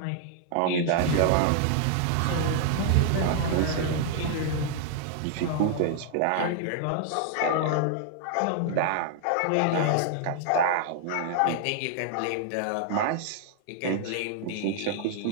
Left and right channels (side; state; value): both; different; correlation 0.00